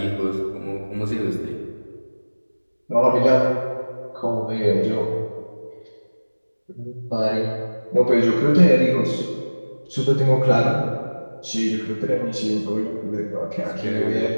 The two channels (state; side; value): inverted; both; correlation -1.00